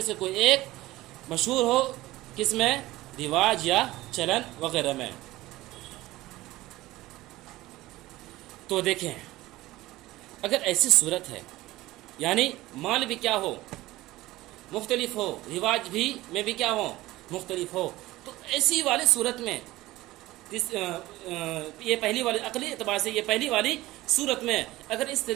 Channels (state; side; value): quieter; left; 17.7 dB